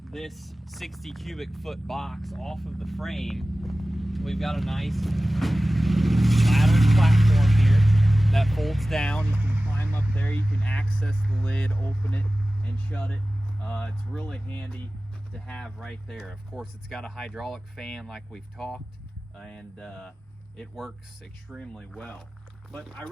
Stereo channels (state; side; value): normal; both; correlation 0.96